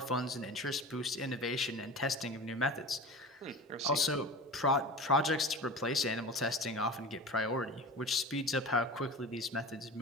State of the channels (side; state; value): both; normal; correlation 0.33